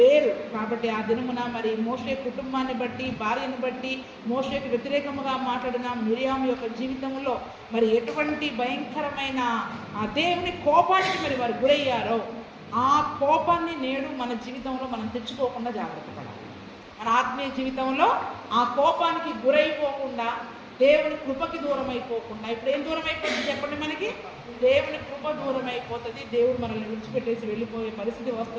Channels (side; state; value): both; identical; correlation 1.00